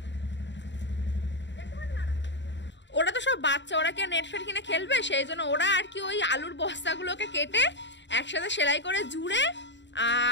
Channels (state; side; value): late; right; 0.52 ms